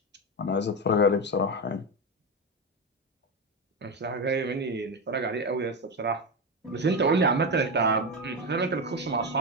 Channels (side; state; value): both; normal; correlation 0.14